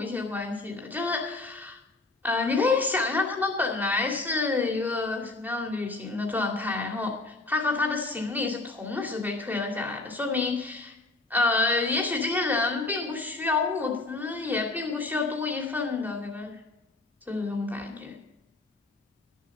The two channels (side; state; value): right; quieter; 3.2 dB